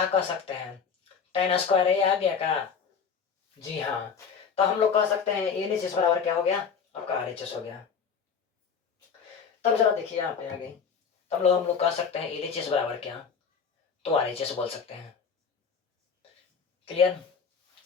कह सकते हैं, टेन स्क्वायर ए आ गया का, जी हाँ। तो हम लोग कह सकते हैं ए एच एस बराबर क्या हो गया, आपका आर एच एस हो गया। तब जरा देखिए यहाँ पे आगे, तब हम लोग कह सकते हैं एल एच एस बराबर क्या, तो आर एच एस बोल सकते हैं। क्लियर।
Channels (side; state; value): right; quieter; 6.3 dB